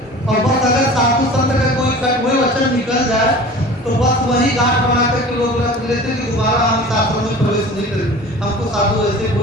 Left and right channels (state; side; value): normal; both; correlation 0.40